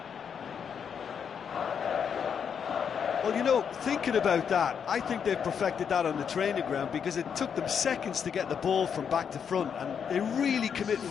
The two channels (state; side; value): quieter; right; 7.3 dB